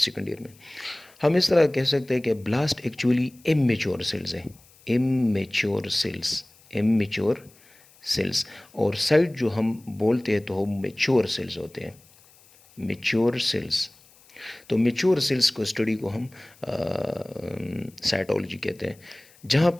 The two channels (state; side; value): noise; left; hiss, 28 dB below the sound